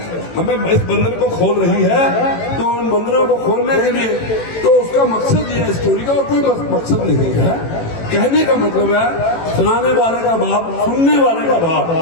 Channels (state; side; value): late; right; 18 ms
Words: हमें इस बंधन को खोल रही है, तो उन बंधनों को खोलने के लिए तो उसका मकसद ये है स्टोरी का, और कोई मकसद नहीं है। कहने का मतलब है सुनाने वाले का भाव, सुनने वाले का